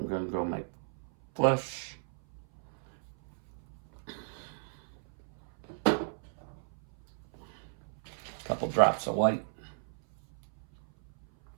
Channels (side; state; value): left; silent; 55 dB below the other